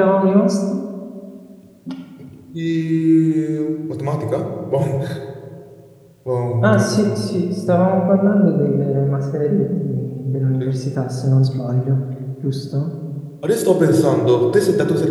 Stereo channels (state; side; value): identical; both; correlation 1.00